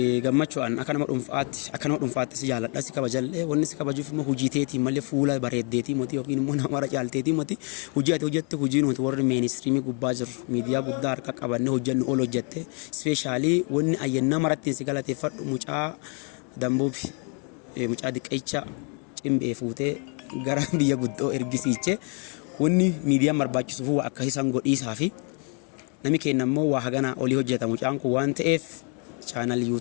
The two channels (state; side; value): quieter; right; 37.7 dB